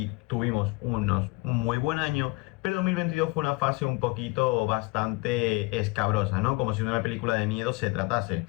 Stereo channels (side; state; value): right; quieter; 24.6 dB